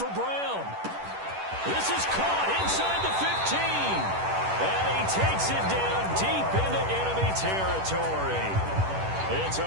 Brown. This is caught inside the 15. And he takes it down deep into enemy territory. It's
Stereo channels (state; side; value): late; left; 10 ms